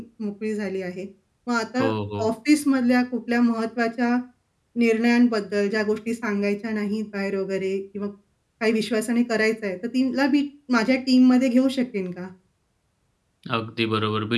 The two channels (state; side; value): identical; both; correlation 1.00